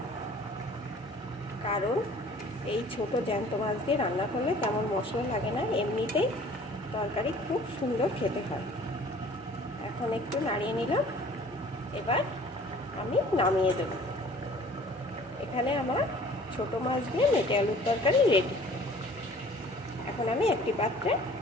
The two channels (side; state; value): both; normal; correlation 0.50